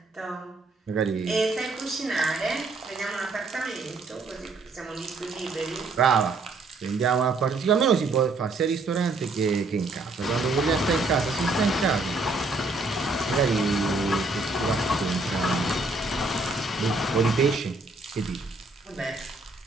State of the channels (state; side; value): quieter; left; 3.4 dB